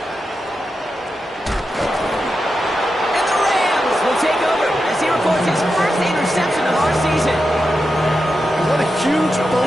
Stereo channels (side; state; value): both; normal; correlation 0.89